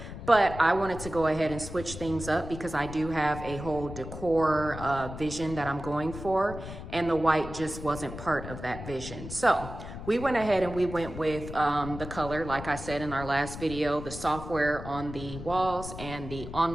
But I wanted to go ahead and switch things up because I do have a whole decor vision that I'm going for, and the white just wasn't part of that vision. So we went ahead and we went with the color, like I said in our last video, the software on the walls and the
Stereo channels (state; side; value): noise; left; rumble, 10 dB below the sound